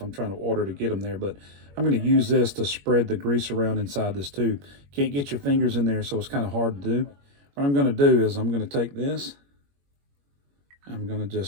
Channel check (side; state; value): left; late; 21 ms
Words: I'm trying to order to get them there, but I'm going to use this to spread the grease around inside this tube. Can't get your fingers in there, so it's kind of hard to do. What I'm going to do is I'm going to take this, I'm going to